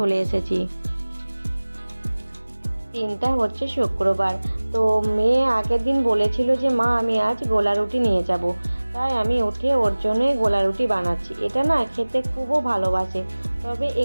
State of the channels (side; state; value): both; inverted; correlation -1.00